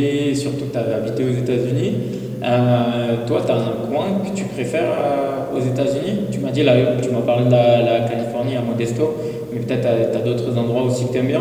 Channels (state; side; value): identical; both; correlation 1.00